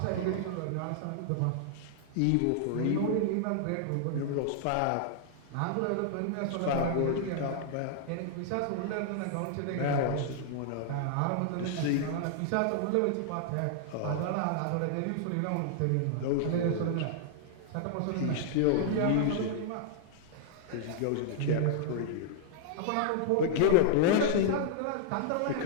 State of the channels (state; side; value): different; both; correlation -0.01